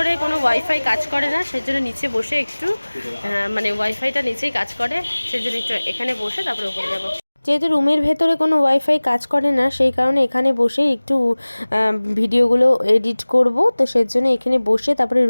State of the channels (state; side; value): inverted; both; correlation -1.00